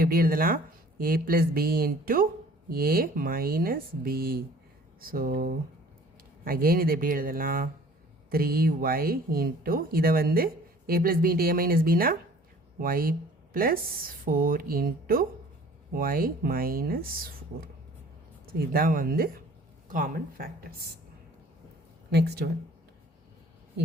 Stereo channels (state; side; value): normal; both; correlation 0.51